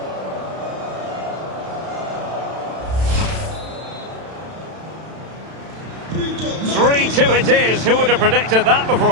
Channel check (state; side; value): late; left; 31 ms